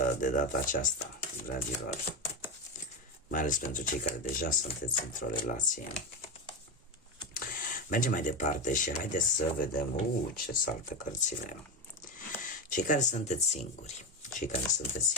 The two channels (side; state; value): both; normal; correlation 0.14